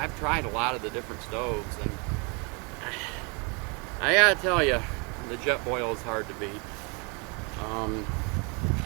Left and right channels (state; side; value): quieter; left; 31.9 dB